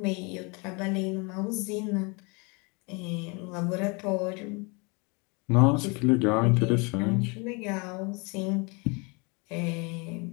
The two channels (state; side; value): quieter; right; 30.4 dB